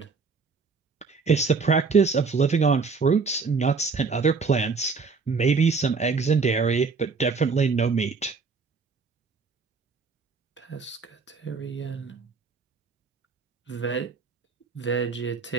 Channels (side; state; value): left; quieter; 4.8 dB